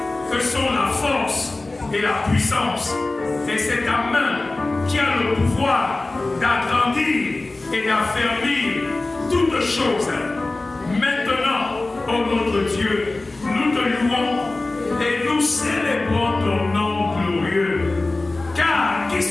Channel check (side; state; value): right; quieter; 3.1 dB